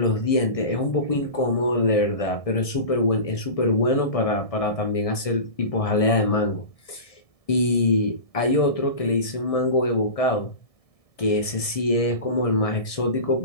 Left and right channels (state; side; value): late; right; 1.6 ms